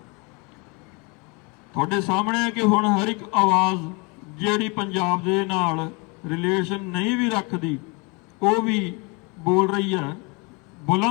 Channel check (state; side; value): quieter; right; 29.9 dB